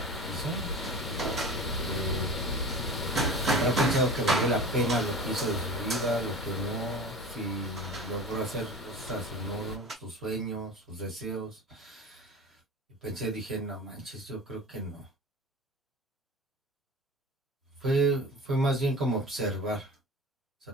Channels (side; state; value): both; normal; correlation 0.35